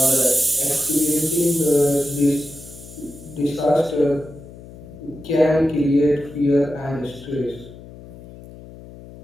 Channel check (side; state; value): left; noise; hum, 17 dB below the sound